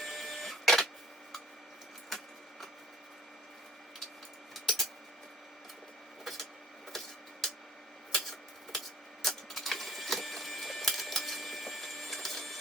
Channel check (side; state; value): both; normal; correlation 0.54